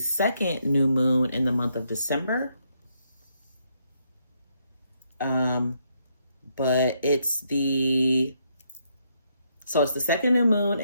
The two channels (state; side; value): inverted; both; correlation -0.76